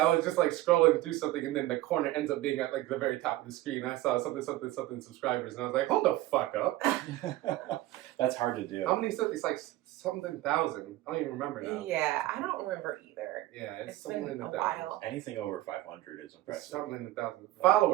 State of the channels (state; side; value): quieter; left; 16.2 dB